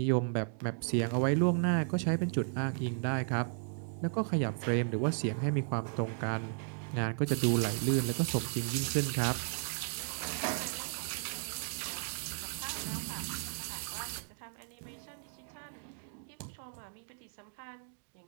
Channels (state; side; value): silent; left; 55 dB below the other